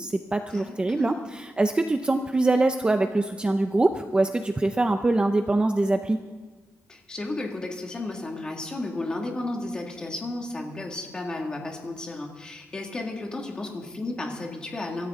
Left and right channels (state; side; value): normal; both; correlation 0.93